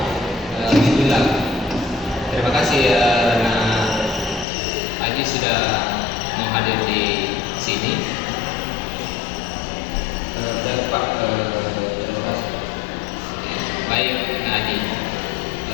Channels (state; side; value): drops out; right; at 4.5 s